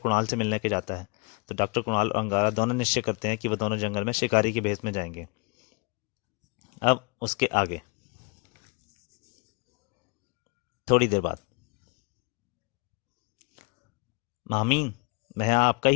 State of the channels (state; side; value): quieter; right; 31.3 dB